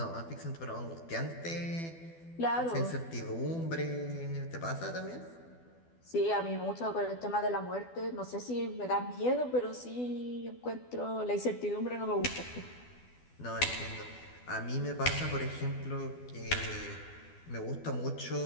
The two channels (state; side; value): late; right; 12 ms